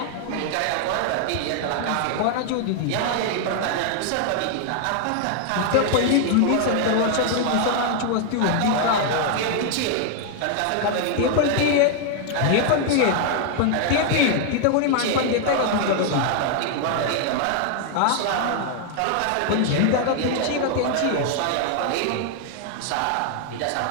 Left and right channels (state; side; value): different; both; correlation 0.00